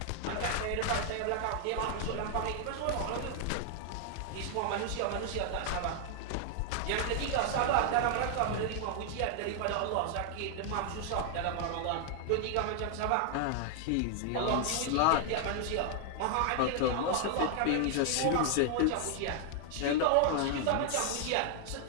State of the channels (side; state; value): both; different; correlation 0.00